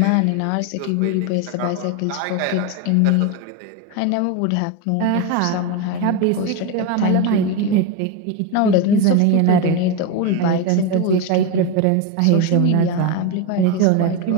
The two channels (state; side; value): different; both; correlation 0.03